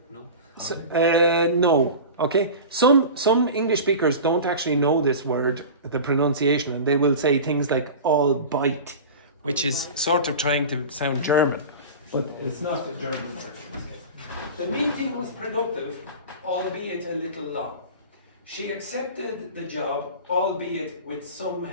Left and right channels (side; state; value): both; inverted; correlation -0.32